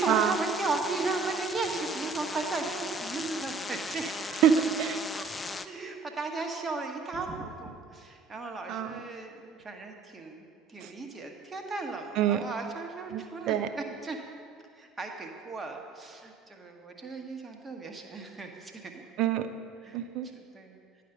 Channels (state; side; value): quieter; left; 4.9 dB